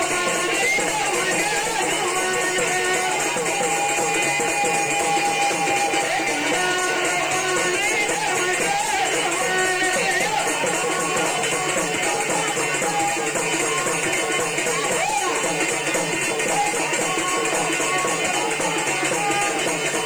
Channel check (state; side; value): noise; right; hiss, 22 dB below the sound